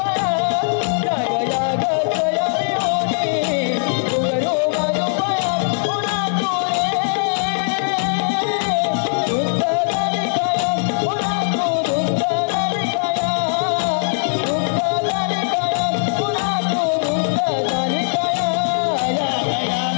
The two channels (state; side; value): silent; right; digital silence